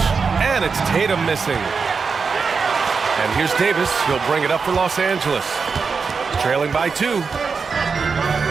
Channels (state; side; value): quieter; left; 5.2 dB